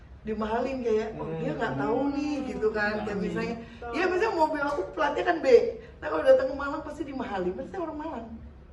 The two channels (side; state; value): both; identical; correlation 1.00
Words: dimahalin kayak, oh dia nggak tahu nih gitu kan. Kayak misalnya, ya misalnya mobil aku platnya kan B. Nah kalau datang ke Malang pasti dimahalin, pasti orang Malang.